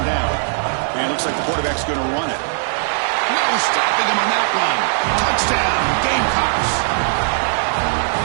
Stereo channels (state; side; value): silent; left; 67 dB below the other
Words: down. And it looks like the quarterback's going to run it. No stopping him on that one. Touchdown, Gamecocks.